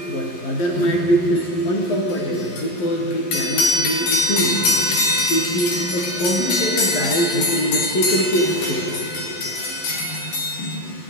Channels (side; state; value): right; late; 11 ms